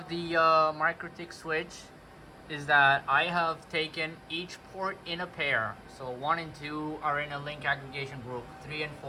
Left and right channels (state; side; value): identical; both; correlation 1.00